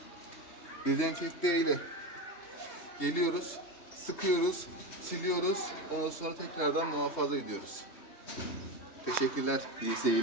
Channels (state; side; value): late; right; 3.2 ms